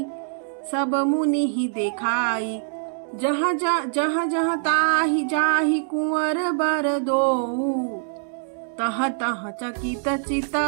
सब मुनि ही देखाई। जहाँ जहाँ ताहि जाहि कुंवर बर दो, तह तह चकित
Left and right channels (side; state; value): left; silent; digital silence